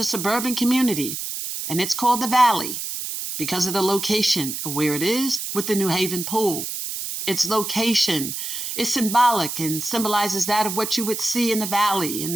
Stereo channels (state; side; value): noise; right; hiss, 5 dB below the sound